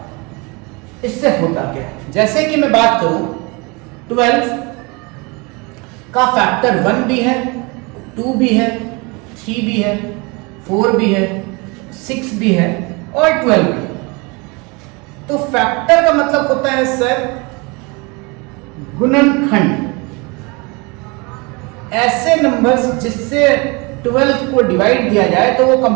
इससे होता क्या है। जैसे कि मैं बात करूं 12 का फैक्टर 1 भी है, 2 भी है, 3 भी है, 4 भी है, 6 भी है और 12 भी है। तो फैक्टर का मतलब होता है सर गुणनखंड, ऐसे नंबर्स जिससे 12 को डिवाइड दिया जाए तो वो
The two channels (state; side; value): quieter; left; 28.2 dB